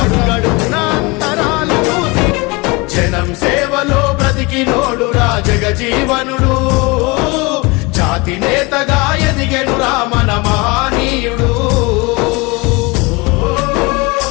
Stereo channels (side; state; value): right; quieter; 25.8 dB